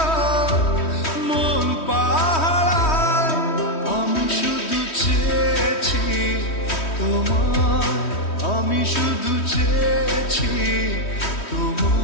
মন পাহাড়, আমি শুধু চেয়েছি তোমার, আমি শুধু চেয়েছি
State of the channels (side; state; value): right; late; 3.1 ms